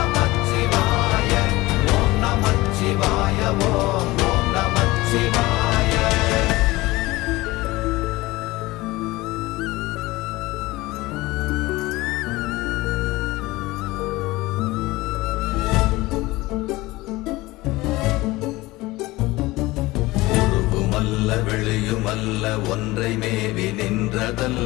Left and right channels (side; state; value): right; quieter; 20.0 dB